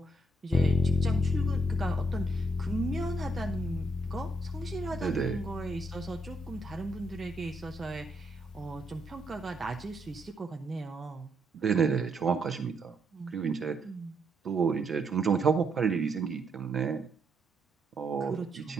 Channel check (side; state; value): both; normal; correlation 0.75